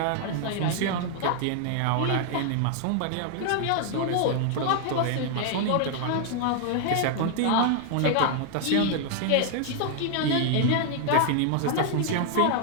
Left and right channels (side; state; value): both; different; correlation 0.00